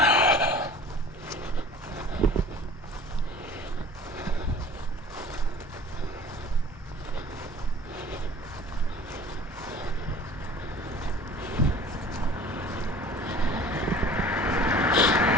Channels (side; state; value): both; normal; correlation 0.45